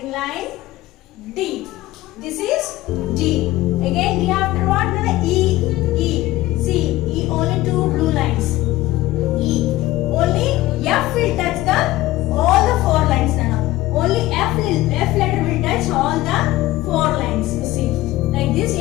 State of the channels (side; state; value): right; quieter; 16.8 dB